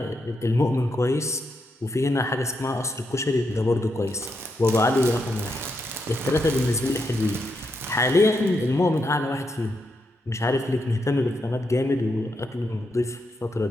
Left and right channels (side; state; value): both; normal; correlation 0.82